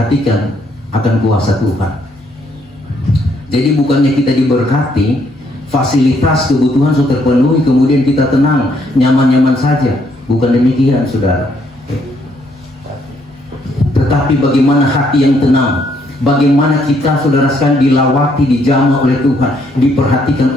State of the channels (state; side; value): normal; both; correlation 0.71